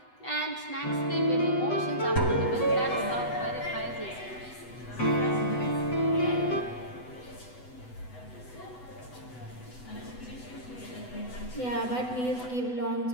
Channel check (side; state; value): right; late; 8.0 ms